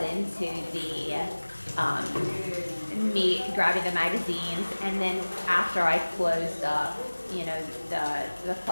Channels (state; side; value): inverted; both; correlation -1.00